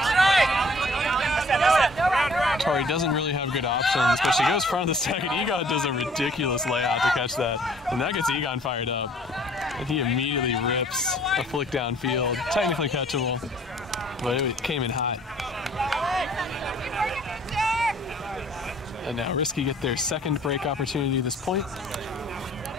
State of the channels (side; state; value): both; normal; correlation 0.56